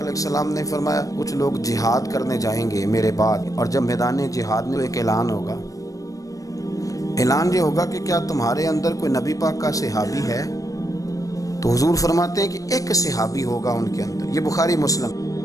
ने फरमाया कुछ लोग जिहाद करने जाएंगे मेरे बाद, और जब मैदान जिहाद में एक ऐलान होगा। ऐलान ये होगा कि क्या तुम्हारे अंदर कोई नबी पाक का सहाबी है? तो हुजूर फरमाते हैं कि एक सहाबी होगा उनके अंदर। ये बुखारी मुस्लिम,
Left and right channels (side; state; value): right; late; 0.16 ms